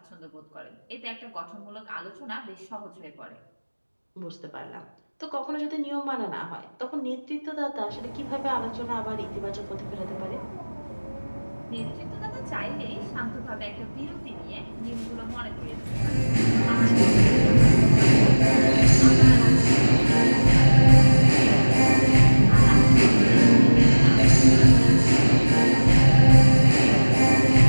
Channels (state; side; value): inverted; both; correlation -1.00